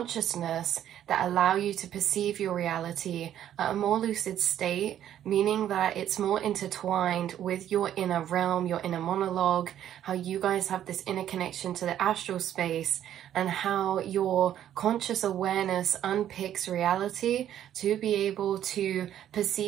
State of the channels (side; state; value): left; quieter; 11.0 dB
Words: that allow you to perceive your reality at a more lucid state, meaning that it's more intertwined with your inner realm, your inner monologue, how you guys have this inner connection to the astral space, and how your conscious awareness unpicks reality to be able to